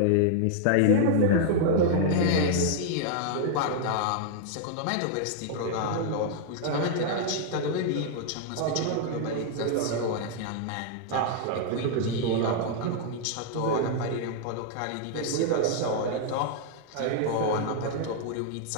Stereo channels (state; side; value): different; both; correlation -0.01